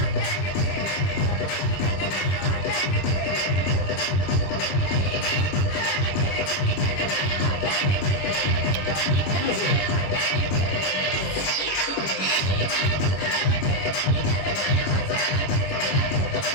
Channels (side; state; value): right; late; 21 ms